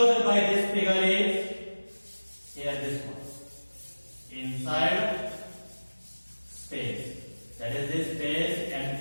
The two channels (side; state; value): both; inverted; correlation -1.00